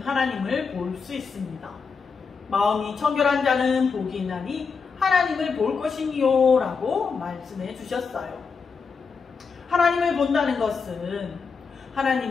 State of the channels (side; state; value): right; quieter; 5.3 dB